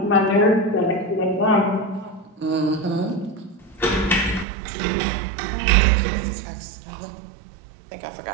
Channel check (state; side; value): drops out; left; at 4.5 s